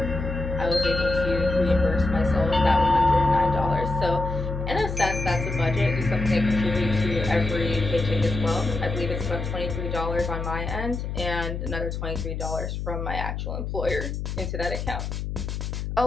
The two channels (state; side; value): noise; left; hum, 4 dB below the sound